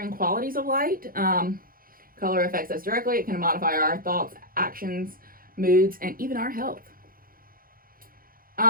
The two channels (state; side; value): late; left; 0.42 ms